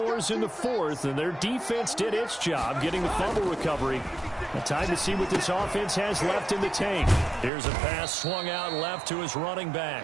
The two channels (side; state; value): left; drops out; at 7.5 s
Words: in the 4th, and their defense did its job getting the fumble recovery. Time to see what this offense has left in the tank. Here's a pass swung out left to his running